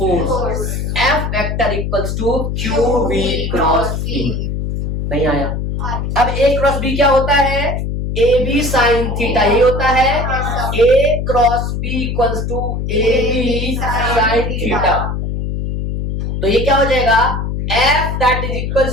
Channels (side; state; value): left; noise; hum, 3 dB below the sound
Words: F vector equals to Q v cross b। नहीं आया? अब a क्रॉस b क्या होता है? ए बी साइन थीटा, ये होता है A cross B equals to A B sine theta. तो ये क्या हो जाएगा? F that is